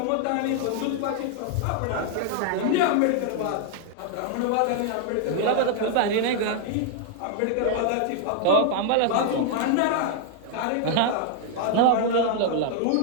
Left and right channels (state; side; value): different; both; correlation 0.00